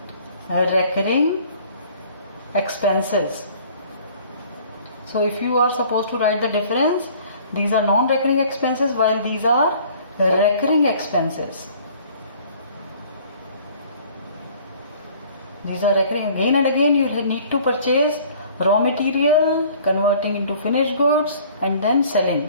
expenses. So if you are supposed to write the difference, these are non-recurring expenses while these are recurring expenses. These are recurring. Again and again you need to purchase raw material, converting into finished goods and then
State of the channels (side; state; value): both; inverted; correlation -0.53